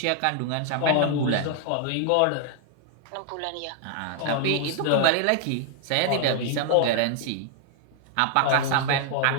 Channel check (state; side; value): different; both; correlation 0.00